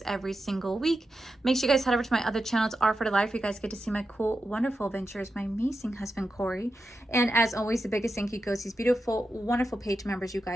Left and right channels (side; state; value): both; normal; correlation 0.89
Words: every single week. Make sure you guys head over to my other channels, R for the Life, where you guys get to see my cool, wonderful adventures, my amazing husband, Corey. And as always, the biggest thank you goes to these beautiful, wonderful page members you